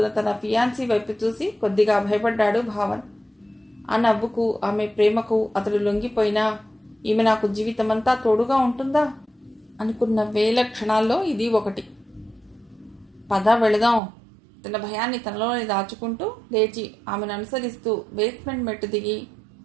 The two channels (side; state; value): left; drops out; at 14.0 s